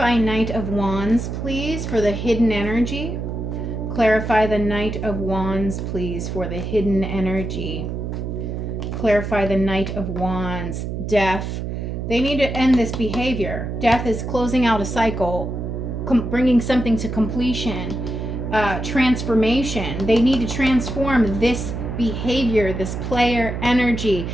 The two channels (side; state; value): right; noise; hum, 4 dB below the sound